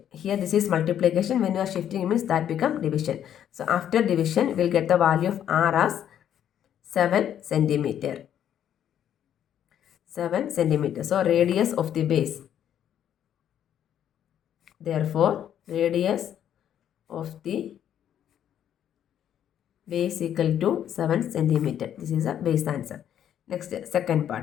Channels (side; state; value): right; quieter; 10.0 dB